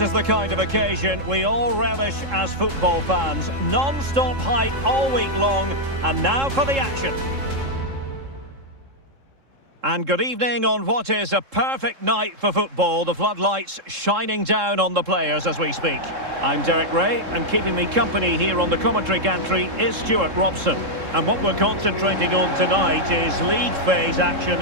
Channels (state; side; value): late; left; 3.7 ms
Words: is the kind of occasion we all relish as football fans. Non-stop hype all week long, and now for the action. And good evening on what is a perfect night for football. The floodlights shining down on the players as we speak. I'm Derek Ray, and keeping me company here on the commentary gantry is Stuart Robson. And what we're concentrating on tonight is league phase